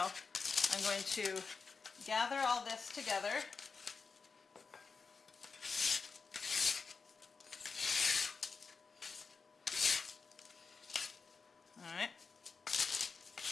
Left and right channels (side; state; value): right; quieter; 4.8 dB